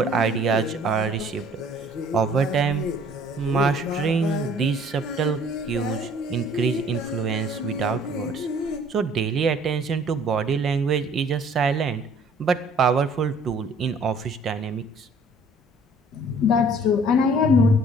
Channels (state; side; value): normal; both; correlation 0.55